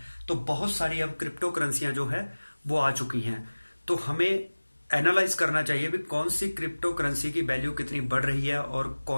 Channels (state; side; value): inverted; both; correlation -1.00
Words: तो बहुत सारी अब क्रिप्टो करेंसियां जो है वो आ चुकी हैं। तो हमें एनालाइज करना चाहिए भी कौन सी क्रिप्टो करेंसी की वैल्यू कितनी बढ़ रही है और